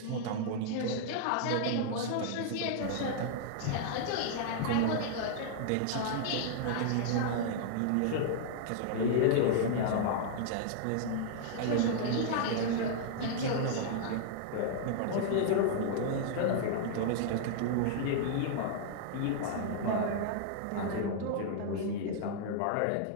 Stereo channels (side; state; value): both; different; correlation -0.01